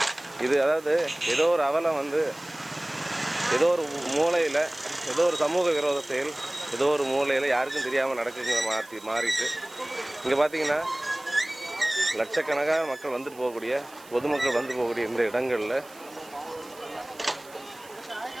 இது அதாவது ஏதோ ஒரு அவலம் வந்து ஏதோ ஒரு மூலையில் ஏதோ ஒரு சமூக விரோத செயல் ஏதோ ஒரு மூலையில் யாருக்கும் தெரியாமல் நடக்குங்கிற மாறிட்டு இங்கே பார்த்தீங்கன்னா லட்சக்கணக்கான மக்கள் வந்துட்டு போகக்கூடிய பொதுமக்கள் வந்து போகக்கூடிய இந்த இடங்களில்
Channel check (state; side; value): noise; right; hiss, 22 dB below the sound